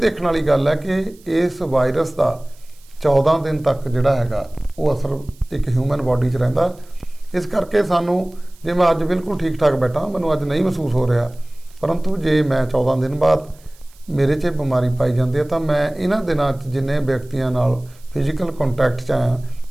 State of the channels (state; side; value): noise; right; hiss, 28 dB below the sound